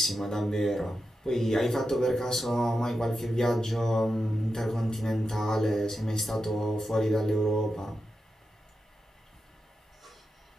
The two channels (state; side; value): normal; both; correlation 0.89